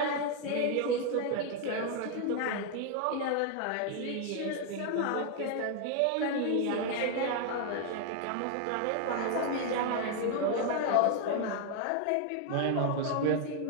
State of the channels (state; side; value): different; both; correlation 0.00